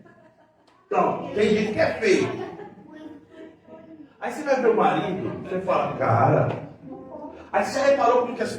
Então, tem gente que é feio. Aí você vai ver o marido, você fala, cara. Aí você já reparou como que as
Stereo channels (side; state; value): both; identical; correlation 1.00